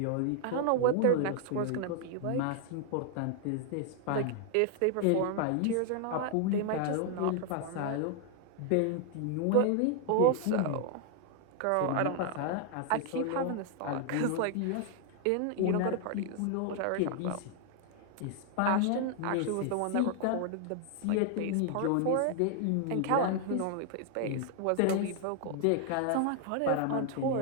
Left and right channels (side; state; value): both; different; correlation 0.00